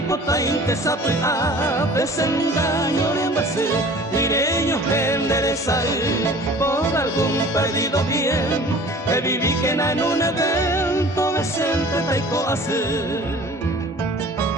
intesapea, desengaño de base, direño enderezar, por algún perdido bien, que viví que en un evento decente taico hacer.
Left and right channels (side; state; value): both; normal; correlation 0.45